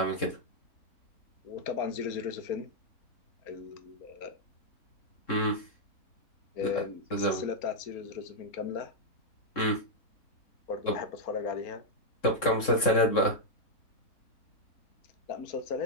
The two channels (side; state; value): right; late; 3.7 ms